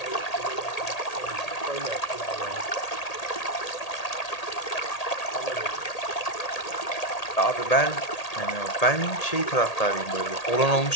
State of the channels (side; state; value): right; late; 1.8 ms